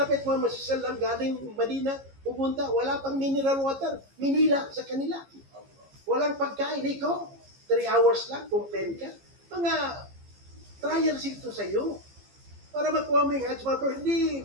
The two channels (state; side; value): late; left; 15 ms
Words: Muhammad sallallahu galing Madina, pupunta, wala pang mineral water, minila sa kanila. Walang pagkain, ikaw, 3 hours lang, complain ka. Mga trials ito sa iyo. Para makuha mo yung Hajj, hindi